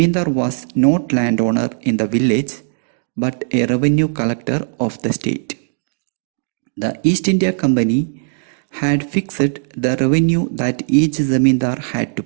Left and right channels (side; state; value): left; silent; digital silence